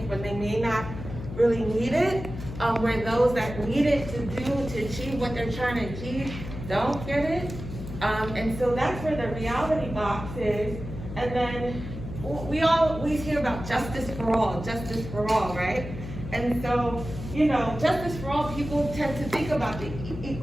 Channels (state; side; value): noise; left; hum, 10 dB below the sound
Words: but they may not really need it? Where those that need it to achieve what they're trying to achieve don't get it? And so that's where the reality box is. And then we always hear about justice for all, right? And so, you know, justice for all, people tend to think about the